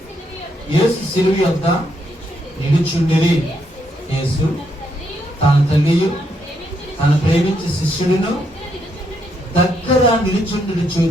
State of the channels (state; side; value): normal; both; correlation 0.76